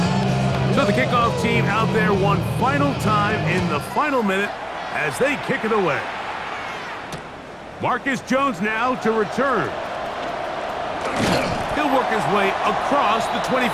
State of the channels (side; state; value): both; identical; correlation 1.00